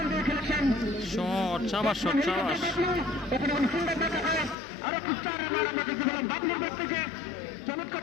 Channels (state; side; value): drops out; right; at 4.5 s